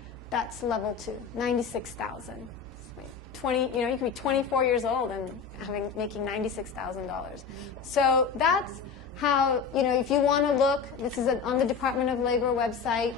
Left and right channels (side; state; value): right; quieter; 6.0 dB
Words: that's level 2, $96,000. You could be 24 years old and making $96,000. So that's how, if you want to look, this is on the Department of Labor website.